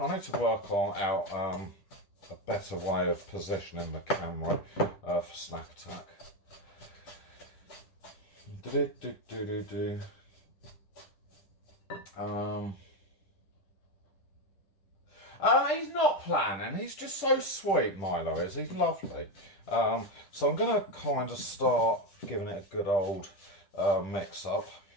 work out a better way of positioning the camera for Snack Attack. He's not planning. He's just so sweet, Milo is. He's lovely. So I'm going to kind of start giving it a good old mix up.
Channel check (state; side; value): late; right; 10 ms